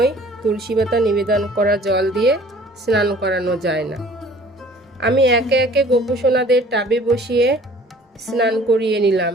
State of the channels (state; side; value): normal; both; correlation 0.51